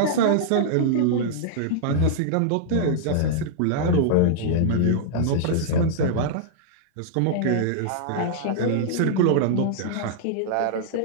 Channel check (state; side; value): different; both; correlation -0.02